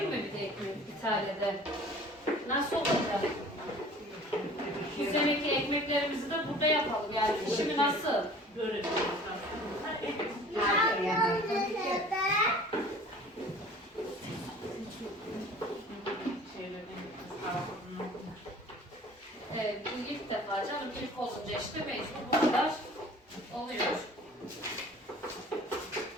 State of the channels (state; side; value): normal; both; correlation 0.47